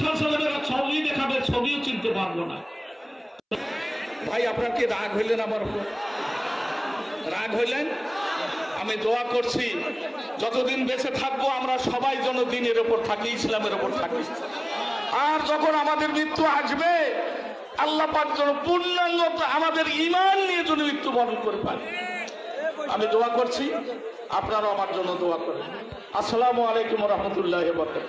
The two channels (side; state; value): both; identical; correlation 1.00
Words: সাল্লাল্লাহু ছবি দেখাবে ছবিও চিনতে পারবো না ভাই আপনার কি রাগ হইলেন আমার উপর রাগ হইলেন আমি দোয়া করছি যতদিন বেঁচে থাকবো আমরা সবাই যেন দ্বীনের উপর থাকি ইসলামের উপর থাকি আর যখন আমাদের মৃত্যু আসবে আল্লাহ পাক যেন পূর্ণাঙ্গ আমাদের ঈমান নিয়ে যেন মৃত্যুবরণ করে পারে আমি দোয়া করছি আপনারাও আমার জন্য দোয়া করেন আসসালামু আলাইকুম ওয়া রাহমাতুল্লাহি ওয়া